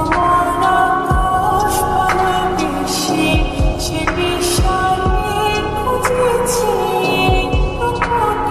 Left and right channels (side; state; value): both; identical; correlation 1.00